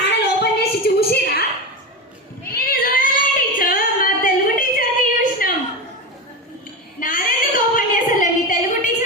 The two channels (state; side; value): normal; both; correlation 0.20